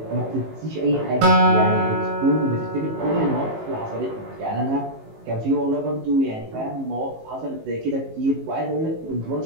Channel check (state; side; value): late; left; 19 ms